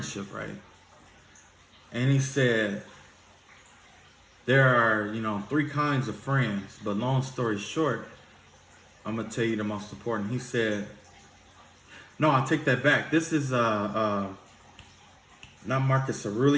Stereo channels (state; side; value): identical; both; correlation 1.00